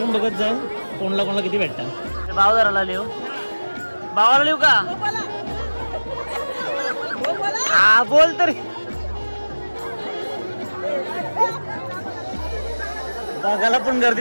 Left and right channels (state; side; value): inverted; both; correlation -1.00